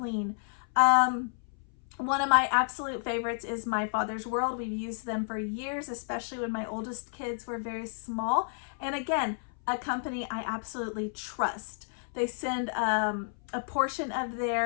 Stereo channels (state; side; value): silent; right; 57 dB below the other